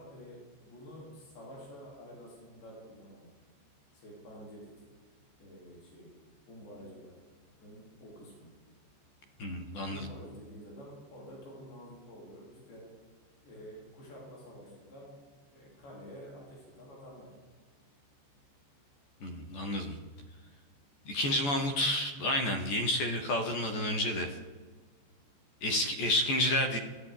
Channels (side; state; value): right; late; 14 ms